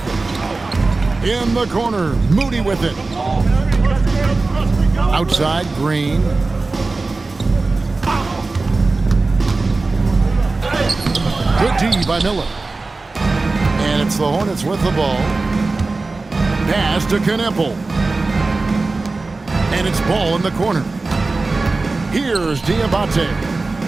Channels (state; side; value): quieter; left; 3.5 dB